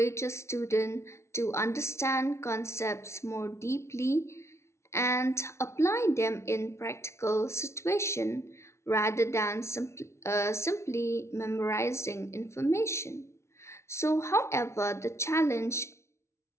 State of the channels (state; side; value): late; right; 0.13 ms